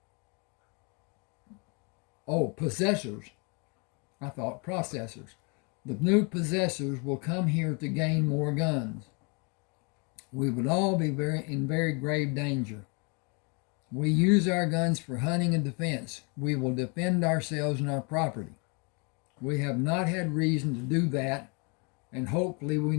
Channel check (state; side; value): quieter; right; 33.2 dB